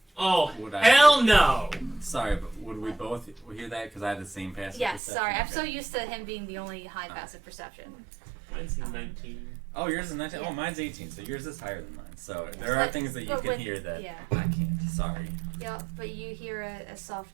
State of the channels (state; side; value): drops out; left; at 5.0 s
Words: Oh, Would I- hell no! Sorry, but would we both hear that? Because I had the same passive Yes, perception. sorry. I'm Okay. so used to him being the only high passive perception. Mine's 19. Oh, yours is 19? Yeah. Oh, mine's 18, so yours is higher than mine. So there are But- things that you but can with- hear that yeah. I can't. Sorry. Yep, but you hear a soft